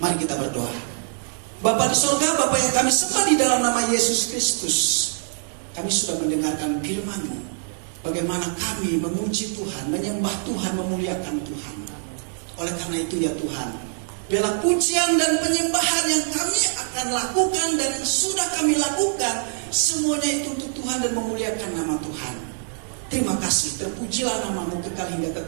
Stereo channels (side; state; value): left; silent; 63 dB below the other